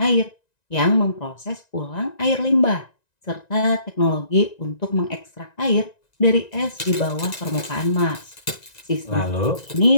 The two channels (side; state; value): right; late; 1.9 ms